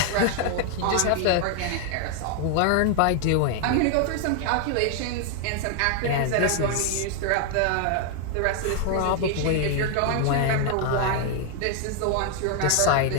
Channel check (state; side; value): different; both; correlation 0.00